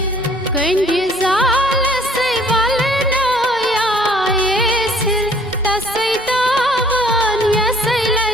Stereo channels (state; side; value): normal; both; correlation 0.57